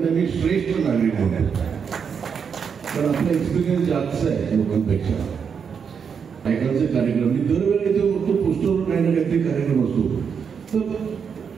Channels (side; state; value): left; quieter; 6.6 dB